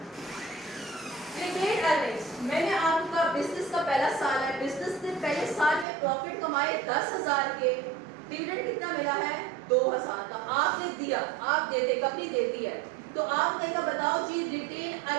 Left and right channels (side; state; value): left; drops out; at 5.9 s